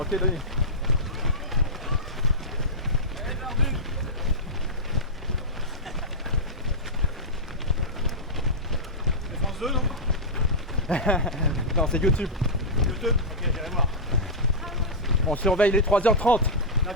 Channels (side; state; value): both; normal; correlation -0.13